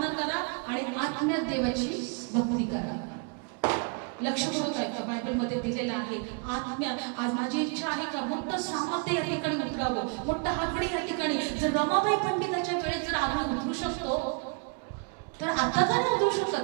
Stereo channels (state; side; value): quieter; left; 35.8 dB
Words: करा आणि आत्म्यात देवाची भक्ती करा. लक्ष करून ऐका, बायबल मध्ये दिलेलं आहे आत्म्या. आज माझी इच्छा आहे का मोठं सामर्थ्य या ठिकाणी उतरावं, मोठं आगडी या ठिकाणी. जर रमाबाई पंडिताच्या वेळेस जर आगडी उतरू शकतो तर आता का नाही उतरू